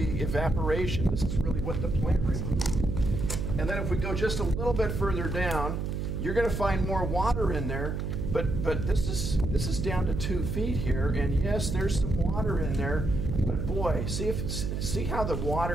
evaporation. This is really what the plant removed. And then if we go just a little bit further down, you're going to find more water in there. But this is down to 2 feet here, and yes, there's some water in there. But boy, see how the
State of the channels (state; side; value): noise; right; hum, 2 dB below the sound